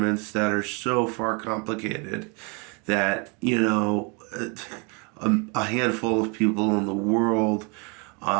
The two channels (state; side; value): quieter; left; 32.0 dB